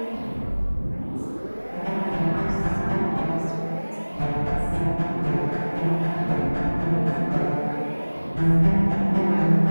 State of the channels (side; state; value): both; inverted; correlation -1.00